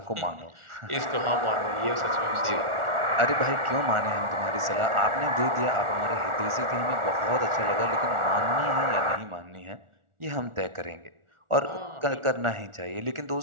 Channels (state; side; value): late; left; 1.4 ms